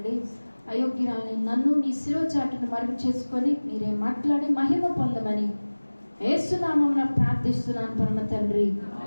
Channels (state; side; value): inverted; both; correlation -1.00